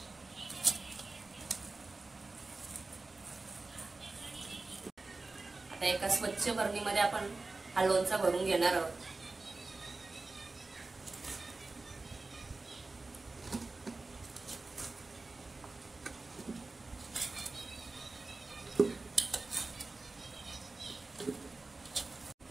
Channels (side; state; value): left; quieter; 3.5 dB